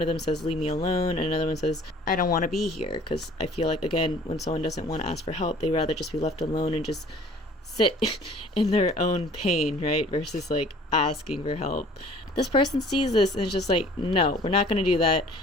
of them says leave me alone, and another one says I don't want to be here, because I feel like, again, when someone doesn't want to ask for help, they rather just be left alone and just sit in their own pain, right, versus like asking for help. This person sees this and is just like, no, we're not going to do that.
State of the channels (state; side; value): normal; both; correlation 0.51